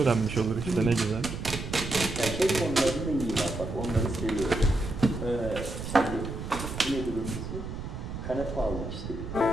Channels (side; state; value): right; noise; rumble, 7 dB below the sound